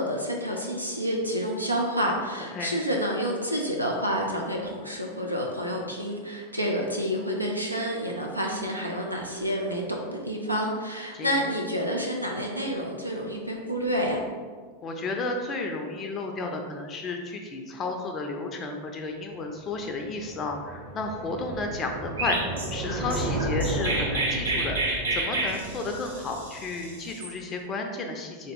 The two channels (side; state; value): both; normal; correlation -0.14